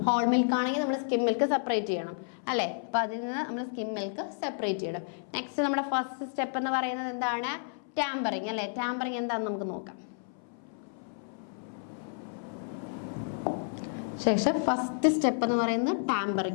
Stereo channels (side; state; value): right; silent; 57 dB below the other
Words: ഹോൾ മിൽക്ക് ആണെങ്കിൽ നമ്മൾ സ്കിം മിൽക്ക് സെപ്പറേറ്റ് ചെയ്യണം അല്ലേ? അപ്പൊ അതിൽ നിന്ന് നമ്മൾ സ്കിം മിൽക്ക് സെപ്പറേറ്റ് ചെയ്യണം. നെക്സ്റ്റ് നമ്മുടെ ഫസ്റ്റ് സ്റ്റെപ്പ് എന്ന് പറയുന്നത് എന്താണ്? ടാമ്പറിങ് അല്ലേ? ടാമ്പറിങ് എന്താണെന്ന് നമുക്ക് നോക്കാം. ശേഷം ഫസ്റ്റ് സ്റ്റെപ്പ് എന്ന് പറയുന്നത്